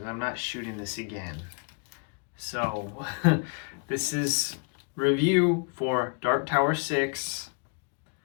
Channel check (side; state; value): right; quieter; 38.2 dB